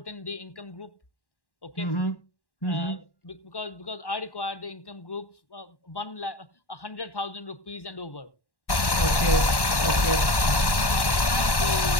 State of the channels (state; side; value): late; right; 1.1 ms